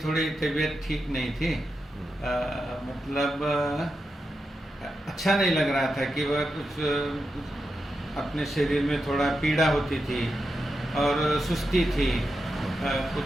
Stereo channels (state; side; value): normal; both; correlation 0.88